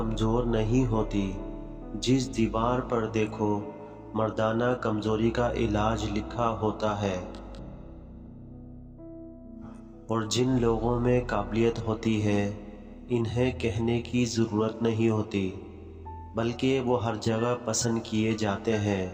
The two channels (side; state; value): both; identical; correlation 1.00